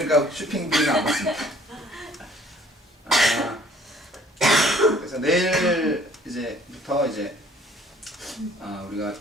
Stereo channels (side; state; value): both; normal; correlation 0.56